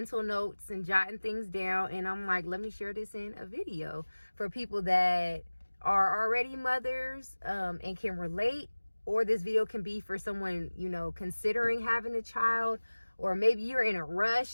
notes and jotting things down, and I'm like, let me share this in a video for people that are already mothers and can relate, or this video can be for someone, considering having a child, or maybe you're in a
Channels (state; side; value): inverted; both; correlation -1.00